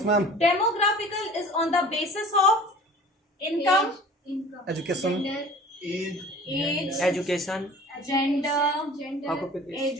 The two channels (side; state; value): both; normal; correlation 0.44